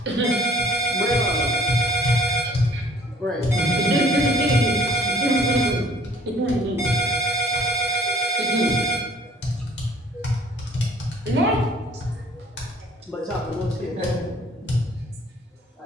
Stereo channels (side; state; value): both; normal; correlation 0.55